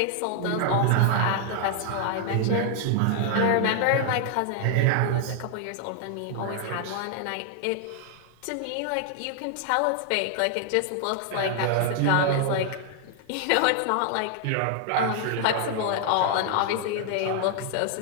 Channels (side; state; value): both; different; correlation 0.00